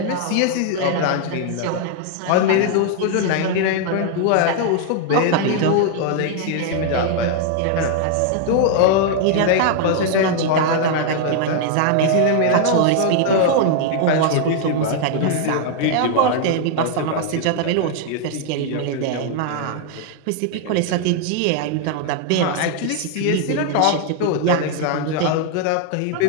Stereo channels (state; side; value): different; both; correlation 0.00